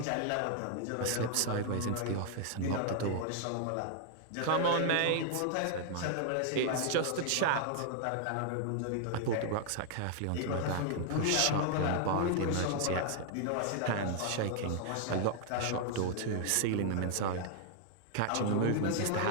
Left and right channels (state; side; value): different; both; correlation 0.00